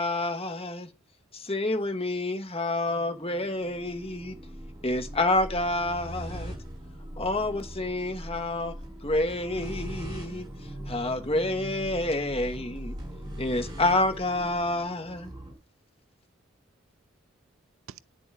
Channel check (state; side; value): normal; both; correlation 0.31